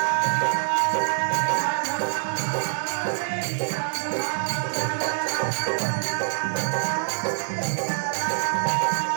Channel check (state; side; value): silent; left; digital silence